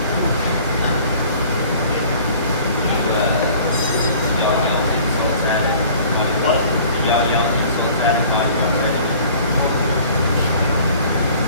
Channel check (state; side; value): inverted; both; correlation -0.50